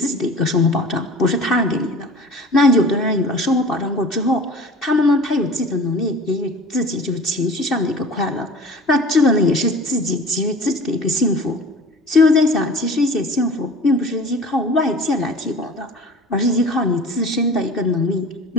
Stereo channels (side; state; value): both; normal; correlation 0.41